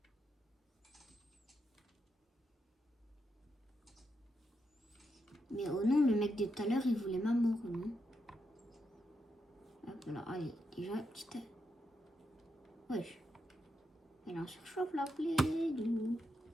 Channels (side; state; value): both; normal; correlation 0.83